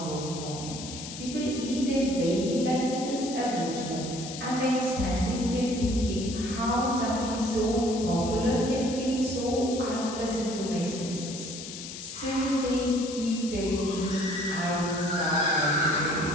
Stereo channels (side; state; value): left; noise; hiss, 10 dB below the sound